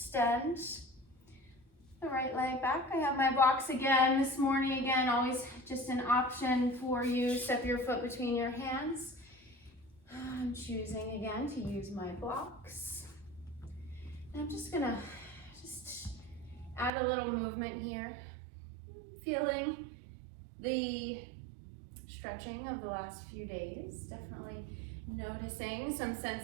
the right leg back. I have my blocks again this morning. Again, always just an option for you. Step your foot between your hands. I'm choosing again to use my blocks. And I'm just gonna add a little movement here. Feeling the stretching of the last few days. Definitely noticing some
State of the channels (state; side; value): drops out; left; at 16.9 s